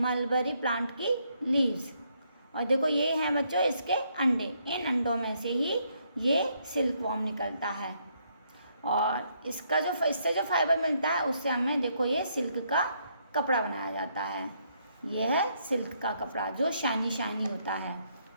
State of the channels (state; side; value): inverted; both; correlation -0.73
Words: प्लांट की लीव्स. और देखो ये हैं बच्चों इसके अंडे, इन अंडों में से ही ये सिल्क वॉर्म निकलता है. और इससे जो फाइबर मिलता है उससे हमें देखो ये सिल्क का कपड़ा बनाया जाता है. ये है सिल्क का कपड़ा जो शाइनी शाइनी होता है.